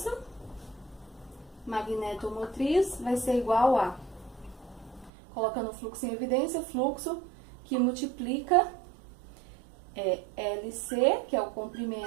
magnetomotriz vai ser igual a, colocando o fluxo em evidência, fluxo que multiplica LC, que é o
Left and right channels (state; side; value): drops out; left; at 5.1 s